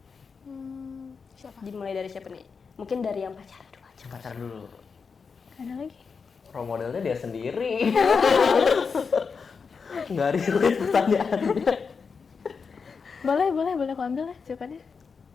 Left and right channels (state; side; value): quieter; right; 5.4 dB